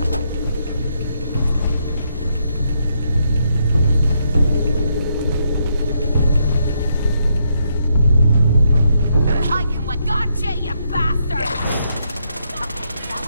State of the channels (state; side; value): inverted; both; correlation -0.77